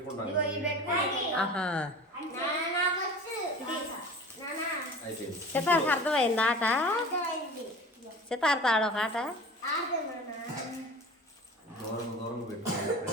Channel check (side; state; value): both; normal; correlation 0.38